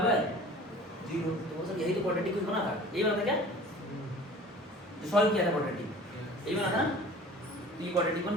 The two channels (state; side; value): normal; both; correlation 0.44